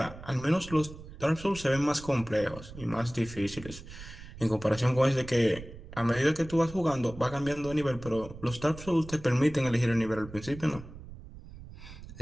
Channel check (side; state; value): right; noise; rumble, 15 dB below the sound